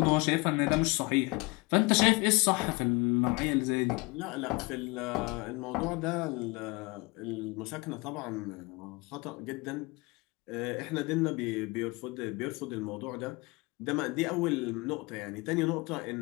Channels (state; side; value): quieter; right; 25.8 dB